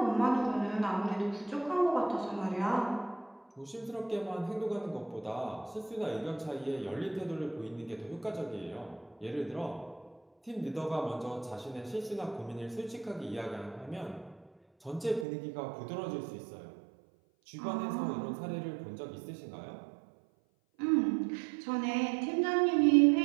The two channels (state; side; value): drops out; left; at 15.2 s